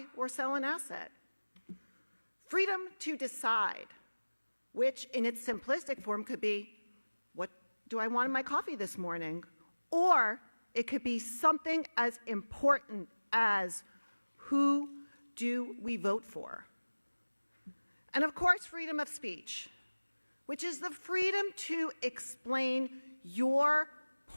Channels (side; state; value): both; inverted; correlation -1.00